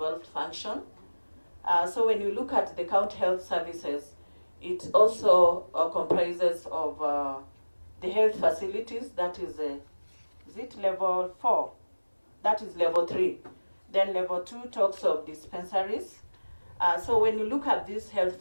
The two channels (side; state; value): both; inverted; correlation -1.00